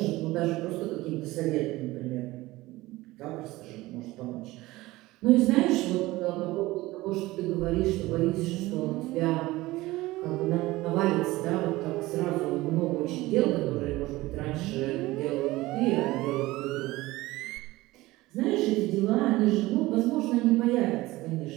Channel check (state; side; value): quieter; left; 18.9 dB